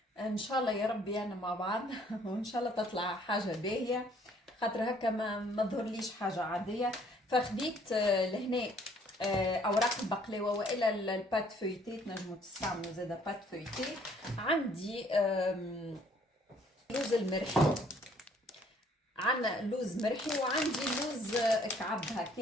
ان شاء الله يا ربي انا مع بعض وان شاء الله تطلع حاجه باهيه، خاطر هكا ما ظهرليش حاجه عاديه. فخديت لهنا اوراق البقلاوه والا البات فويتي، تنجموا تستعملوا زاده بات فويتي. عندي لوز المرحي، عندنا لوز مرحي وعندي لوز كعب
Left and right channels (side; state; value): both; normal; correlation 0.61